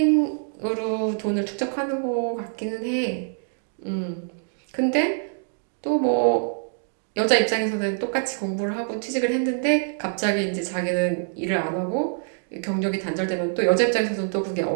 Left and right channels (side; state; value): left; silent; digital silence